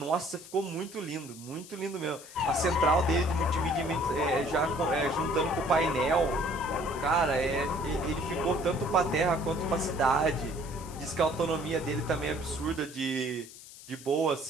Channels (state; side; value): noise; left; hiss, 17 dB below the sound